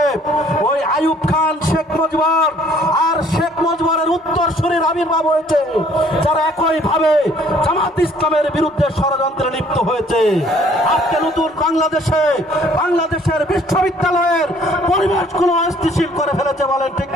ওই আইয়ুব খান, শেখ মুজিবুর আর শেখ মুজিবুরের উত্তরসূরির আবির্ভাব হয়েছে, যারা একই ভাবে জামাত ইসলামের বিরুদ্ধে ষড়যন্ত্রে লিপ্ত হয়েছে। আজকে নতুন বাংলাদেশে বাংলাদেশের বিশ্ববিদ্যালয়ের পরিবেশগুলো অস্থিতিশীল করে ফেলেছে, বলেন ঠিক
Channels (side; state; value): both; normal; correlation 0.59